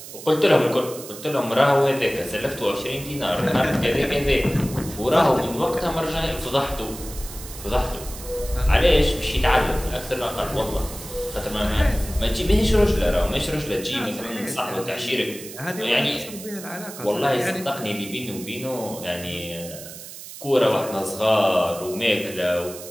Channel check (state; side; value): noise; right; hiss, 13 dB below the sound